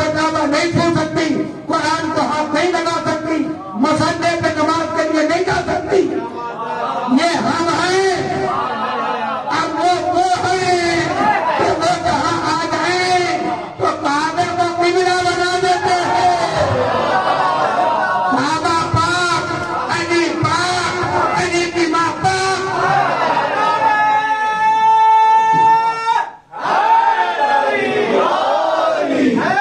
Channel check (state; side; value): identical; both; correlation 1.00